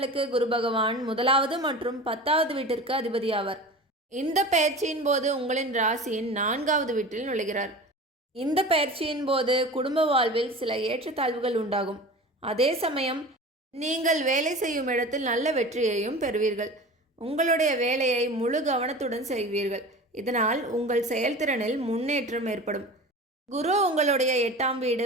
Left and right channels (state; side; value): normal; both; correlation 0.35